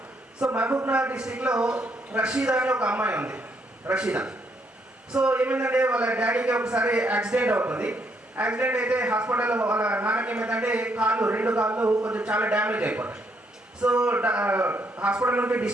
సో మహబూబ్నగర్ డిస్టిక్లో రషీదా అని ఒక అమ్మాయి ఉంది, రషీదా. సో ఏమైందంటే వాళ్ళ డాడీకి ఒకసారి యాక్సిడెంట్ అవుతుంది. యాక్సిడెంట్ అయితే హాస్పిటల్లో వాళ్ళ నాన్నకి ఏమైందంటే రెండు కాళ్ళు కొంచెం చాలా డ్యామేజ్ అయిపోతాయి. సో హాస్పిటల్ నుండి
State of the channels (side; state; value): both; normal; correlation 0.73